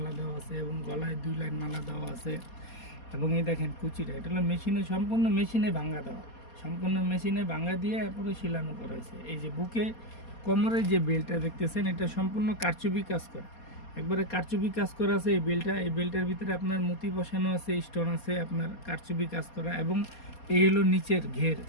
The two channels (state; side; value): late; right; 4.2 ms